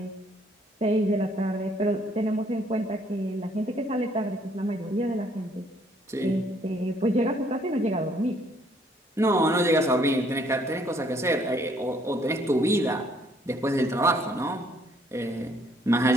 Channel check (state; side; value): normal; both; correlation 0.65